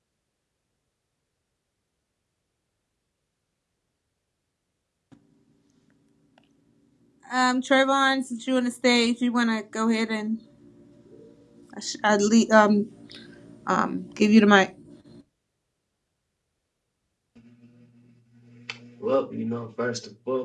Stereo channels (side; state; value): both; identical; correlation 1.00